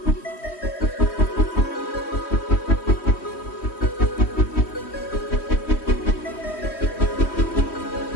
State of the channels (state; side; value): late; right; 3.1 ms